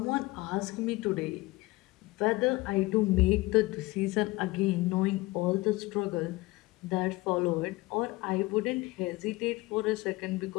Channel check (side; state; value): right; quieter; 21.2 dB